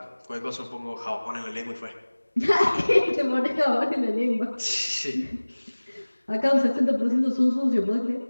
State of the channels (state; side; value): inverted; both; correlation -1.00